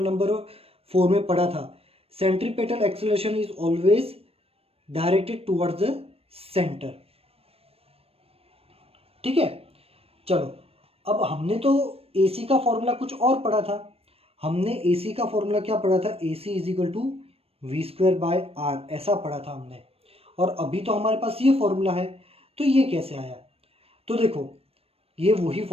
नंबर 4 में पढ़ा था, centripetal acceleration is always directed towards the centre. ठीक है, चलो, अब हमने तो AC का फॉर्मूला कुछ और पढ़ा था। हमने AC का फॉर्मूला क्या पढ़ा था? AC is equal to V square by R, ऐसा पढ़ा था हमने। और अभी तो हमारे पास ये फॉर्मूला है, तो ये कैसे आया? तो देखो, ये वही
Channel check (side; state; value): left; late; 0.28 ms